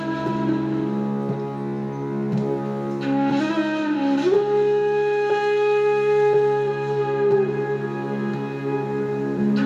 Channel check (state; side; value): identical; both; correlation 1.00